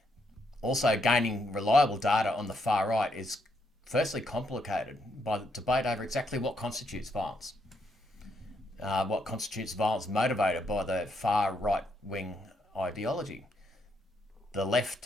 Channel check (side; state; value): both; normal; correlation 0.76